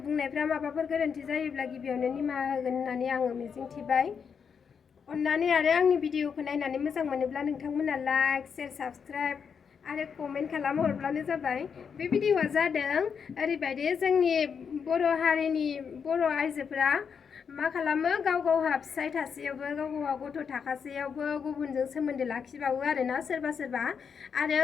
माबाफोर गोरोन्थि जायोब्ला गिबियावनो निमाहा होगोन होननानै आङो मिजिंथिबाय। अननानै आरो आंनि भिडिअखौ नायनानै मोजां मोनोब्ला नोंथांमोना लाइक शेयर साबस्क्राइब आरो कमेन्ट खालामहरब्लानो जाबाय। बे भिडिअआ जादों ओरैबायदि जोंनि बर' हारिनि बर' आइजोफोरा मा खालामो गाव गावहा फिसाय थासेयावबो गाव गावहा गथ' थाखासेयावबो गुबुनजों सोमोन्दो लाखिबावो आरोना सोरबा सोरबा आरो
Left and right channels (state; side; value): quieter; right; 6.6 dB